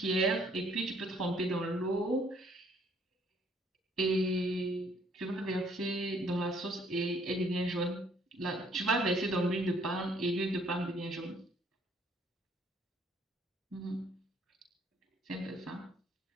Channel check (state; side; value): normal; both; correlation 0.63